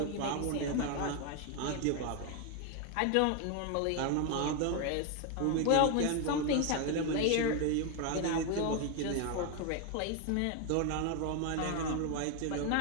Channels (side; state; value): both; different; correlation 0.01